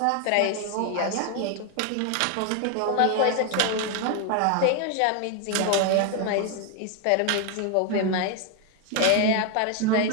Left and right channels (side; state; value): both; different; correlation 0.01